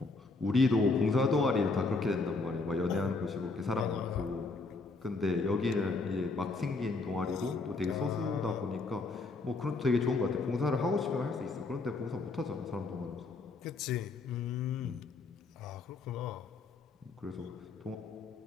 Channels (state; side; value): quieter; right; 3.7 dB